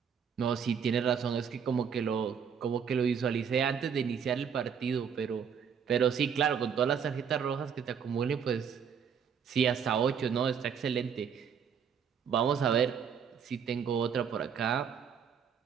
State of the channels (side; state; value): left; quieter; 7.2 dB